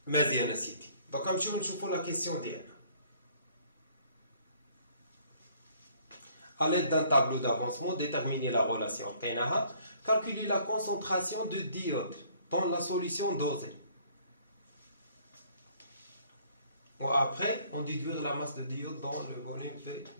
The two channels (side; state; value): both; inverted; correlation -0.60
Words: مزيان سيدي دونك غنمشيو نشوفو لا كيسيون ديالنا À l'aide d'un tableau d'avancement, déterminer la relation. Calculer la concentration de d'iode dans la solution dosée. Bon, après, on déduire la masse de d'iode dans le volume de